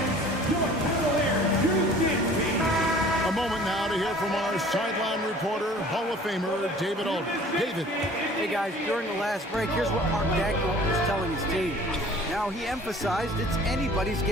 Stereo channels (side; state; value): both; normal; correlation 0.49